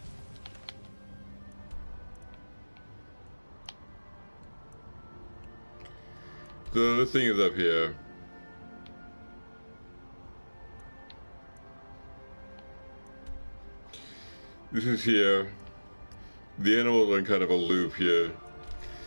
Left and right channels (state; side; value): inverted; both; correlation -1.00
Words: So this thing is up here. This is here. The animals are in kind of a loop here.